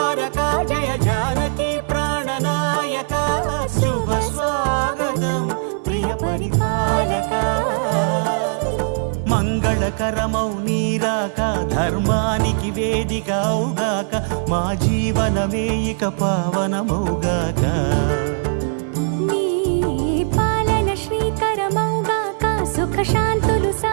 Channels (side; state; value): left; silent; 56 dB below the other